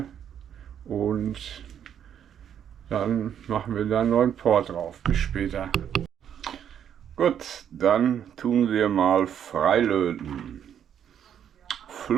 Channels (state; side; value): quieter; left; 9.2 dB